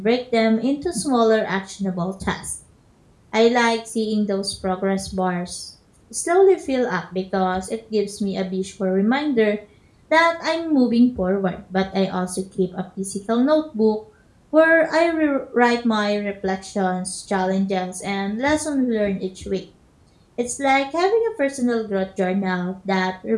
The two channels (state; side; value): identical; both; correlation 1.00